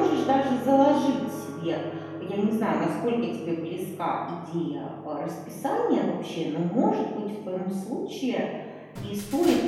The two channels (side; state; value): both; identical; correlation 1.00